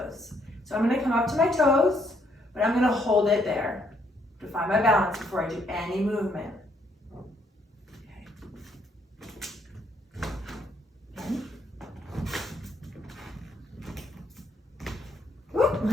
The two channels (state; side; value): normal; both; correlation 0.70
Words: So I'm gonna come up to my toes, but I'm gonna hold it there to find my balance before I do any movement. Okay. Again.